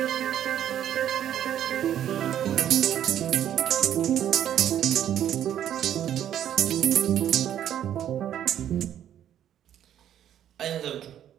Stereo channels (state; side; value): quieter; left; 10.6 dB